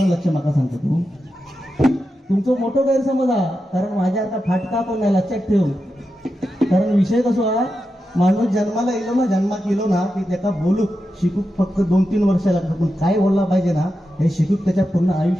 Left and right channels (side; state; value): both; normal; correlation 0.89